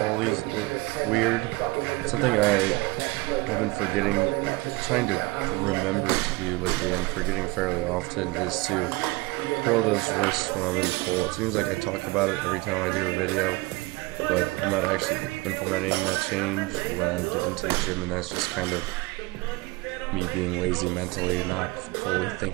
these weird. Something I've been forgetting, trying to remember to do lately and forgetting fairly often is to curl those wrists when I'm in pull. It seems like I talk about it every time I do a video, but I'm not actually implementing that change when I get into the gym, and that's just kind of me being lazy mentally, not fully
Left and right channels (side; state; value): left; quieter; 23.2 dB